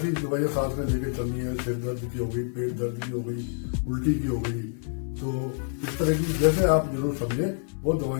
दवाइयाँ साथ में लेके चलनी है। सिर दर्द की हो गई, पेट दर्द की हो गई, उल्टी की हो गई, तो इस तरह की जैसे आप जरूर समझे वो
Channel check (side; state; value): right; silent; 60 dB below the other